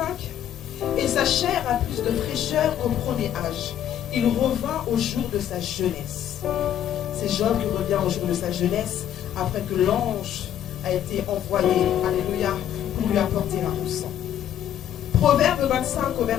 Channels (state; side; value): quieter; right; 10.5 dB